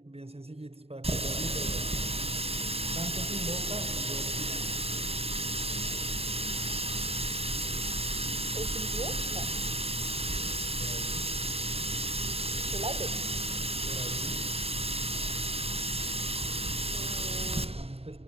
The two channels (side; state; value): left; late; 0.29 ms